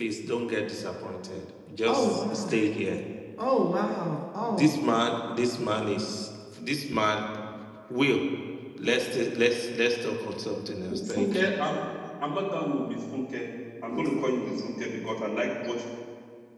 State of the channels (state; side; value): identical; both; correlation 1.00